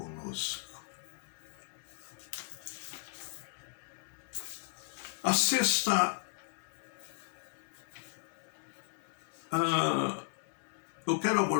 A sexta, eu quero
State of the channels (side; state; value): right; silent; 54 dB below the other